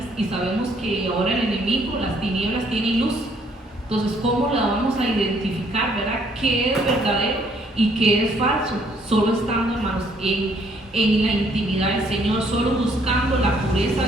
y sabemos que ahora el enemigo, las tinieblas tienen luz. Entonces, ¿cómo la vamos a identificar, verdad? ¿Qué es verdadero y qué es falso? Solo estando, hermanos, en la intimidad del Señor, solo buscando la pureza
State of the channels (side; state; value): both; normal; correlation 0.66